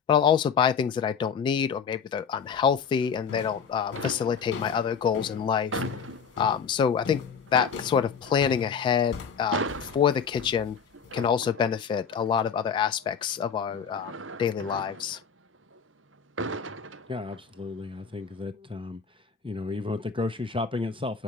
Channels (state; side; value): quieter; right; 6.6 dB